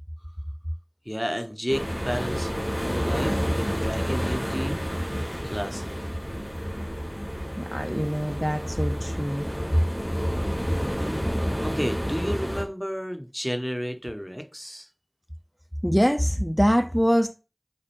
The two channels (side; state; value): both; identical; correlation 1.00